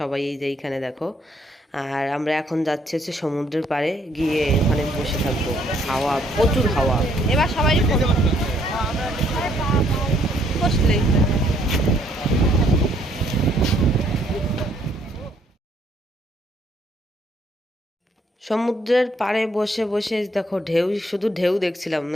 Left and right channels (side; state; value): both; normal; correlation 0.67